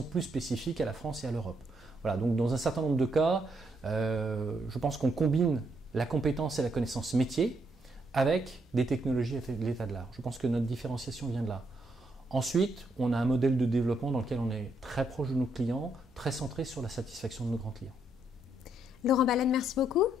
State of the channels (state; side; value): normal; both; correlation 0.76